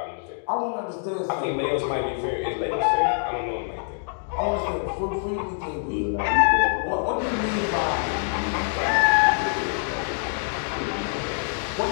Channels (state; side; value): silent; right; digital silence